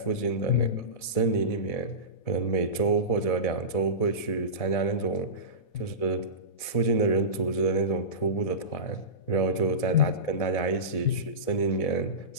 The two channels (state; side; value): late; right; 4.0 ms